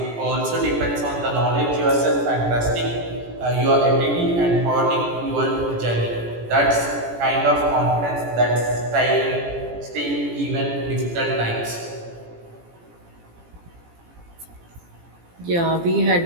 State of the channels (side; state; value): left; late; 17 ms